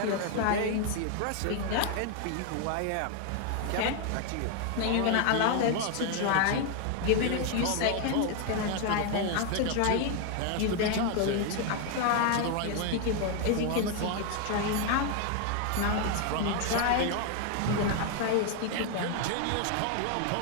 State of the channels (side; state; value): both; different; correlation 0.00